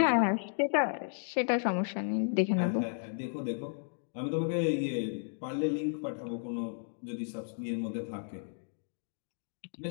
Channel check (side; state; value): right; silent; digital silence